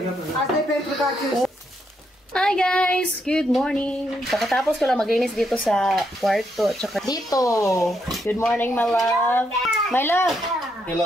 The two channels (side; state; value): both; normal; correlation 0.78